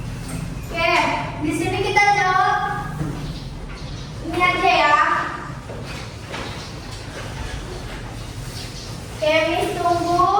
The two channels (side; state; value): both; identical; correlation 1.00